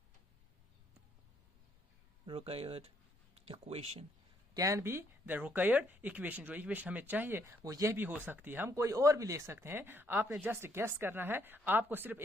required equation, can be the required equation. जो इक्वेशन हमें चाहिए वो यह भी हो सकती है, हम कोई और भी ले सकते हैं। आपने जस्ट गेस करना है, आपको सिर्फ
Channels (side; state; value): both; normal; correlation 0.71